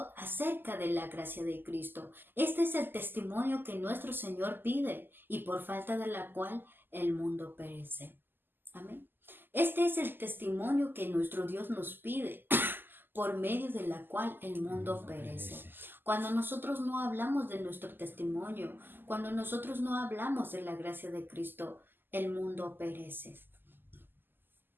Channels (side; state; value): left; late; 0.094 ms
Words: acerca de la gracia de Cristo. Este es el testimonio que nuestro Señor pide y por falta de la cual el mundo perece. Amén. Este es el testimonio que nuestro Dios nos pide, por medio de la cual el mundo perece. Cuando nosotros no hablamos de nuestro testimonio, cuando nosotros no hablamos de la gracia de Cristo, el mundo perece.